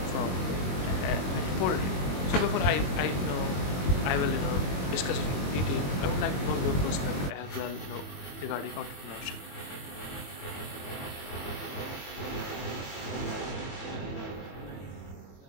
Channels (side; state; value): right; late; 22 ms